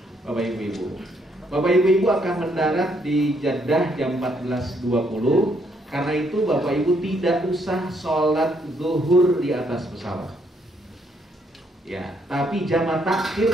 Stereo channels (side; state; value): both; normal; correlation 0.72